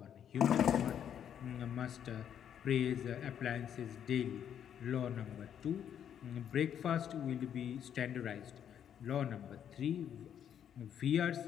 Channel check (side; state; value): right; quieter; 9.1 dB